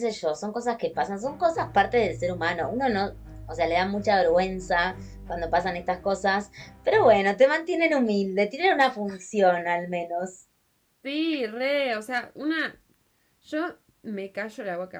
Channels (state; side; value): identical; both; correlation 1.00